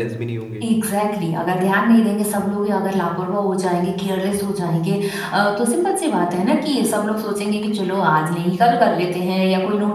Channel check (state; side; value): identical; both; correlation 1.00